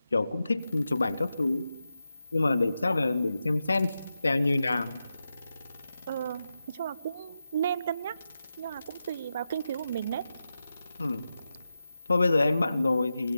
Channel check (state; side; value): inverted; both; correlation -0.90